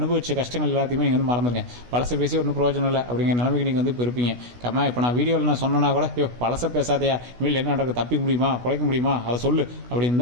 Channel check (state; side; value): late; left; 16 ms